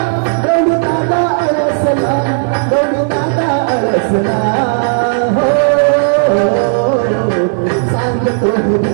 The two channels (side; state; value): left; silent; 66 dB below the other